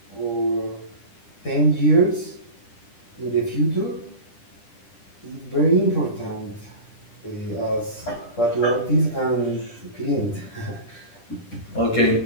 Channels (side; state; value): right; late; 10 ms